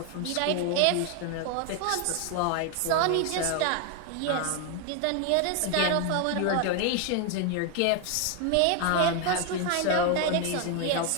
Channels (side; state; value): both; different; correlation 0.01